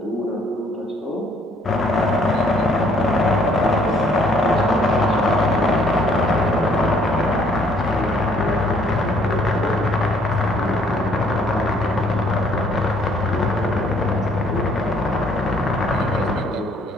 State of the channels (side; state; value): both; normal; correlation 0.63